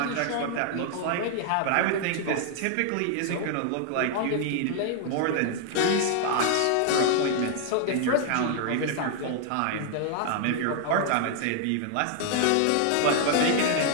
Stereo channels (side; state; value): both; different; correlation 0.00